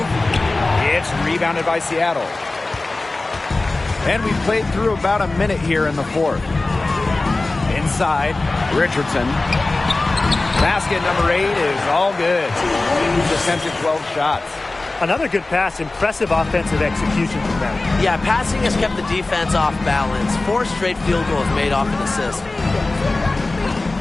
It's rebounded by Seattle. And we've played through about a minute here in the fourth. Inside, Richardson. Basket number 8 is all good. He's attempted 12 shots. Another good pass, impressive offensive execution from them. Yeah, passing has kept the defense off balance. 4 straight field goals made off an assist.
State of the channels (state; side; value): quieter; right; 3.2 dB